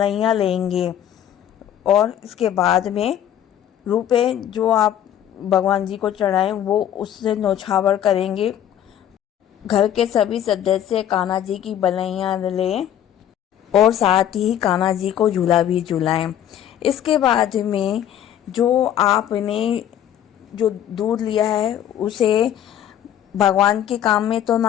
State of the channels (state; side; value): quieter; right; 10.6 dB